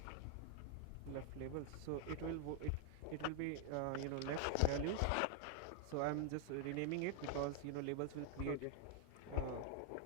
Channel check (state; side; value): different; both; correlation 0.00